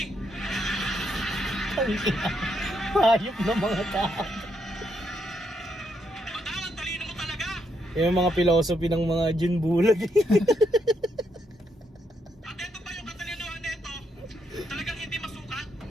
Hayop na mga tao. Madawang talino mo talaga. Yung mga philosophy ng mga Jun Bulag. At ito pa yung katalinuhan nito, talagang hindi masukat.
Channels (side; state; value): both; normal; correlation 0.78